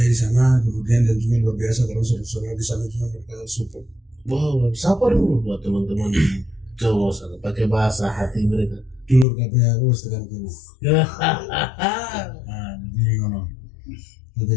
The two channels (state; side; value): drops out; right; at 9.2 s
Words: di sana, kemudian dan juga luar biasa kalau saudara di sana juga mereka support. Wow, siapa dulu buat teman-teman di Jawa sana pakai bahasa hati mereka. Dulur kabeh aku wis tekan kene. Jadi ngono.